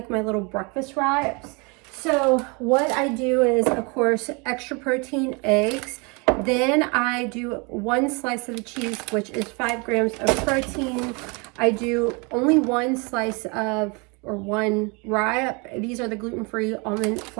my little breakfast wraps. So what I do is, of course, extra protein eggs. Then I do 1 slice of the cheese, which is 5 grams of protein. I do only 1 slice of or one wrap. These are the gluten-free almond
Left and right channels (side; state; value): left; quieter; 30.6 dB